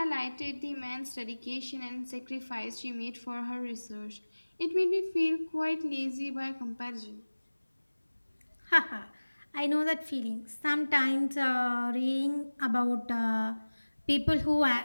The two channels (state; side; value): inverted; both; correlation -1.00